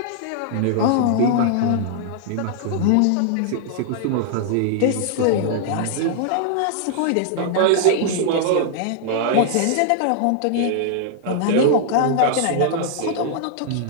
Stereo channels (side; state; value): both; different; correlation -0.01